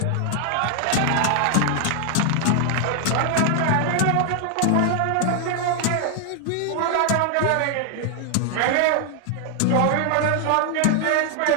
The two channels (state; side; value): different; both; correlation 0.00